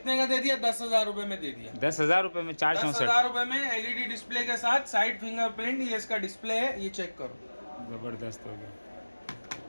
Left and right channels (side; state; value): both; inverted; correlation -1.00